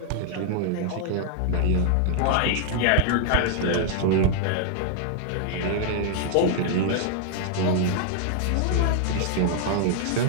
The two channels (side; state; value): both; different; correlation 0.00